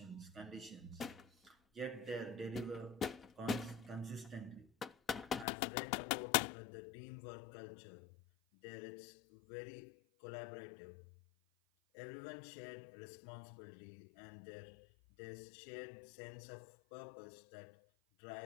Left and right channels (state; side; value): drops out; right; at 5.5 s